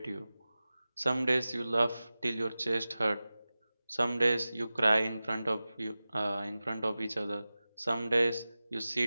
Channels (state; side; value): inverted; both; correlation -0.96